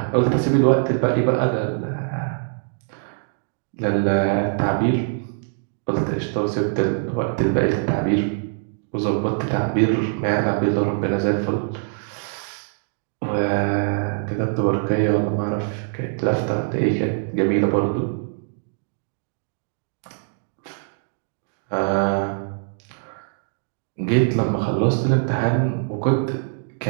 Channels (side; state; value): left; silent; digital silence